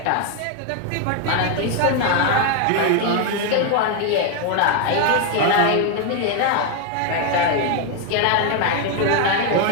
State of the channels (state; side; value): different; both; correlation 0.01